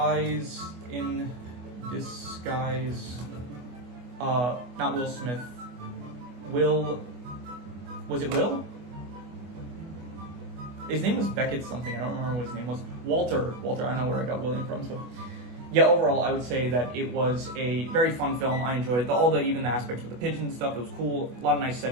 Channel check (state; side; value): late; left; 24 ms